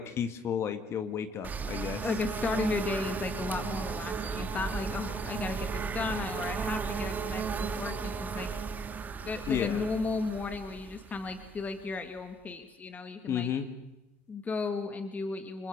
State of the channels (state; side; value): normal; both; correlation 0.66